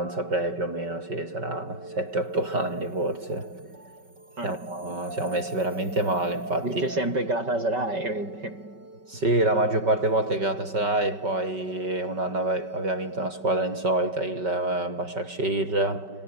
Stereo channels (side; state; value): left; late; 5.3 ms